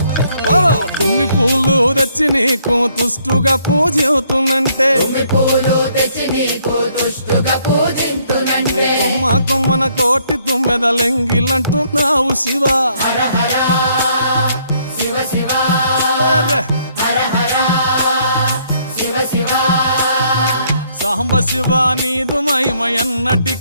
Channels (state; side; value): inverted; both; correlation -0.67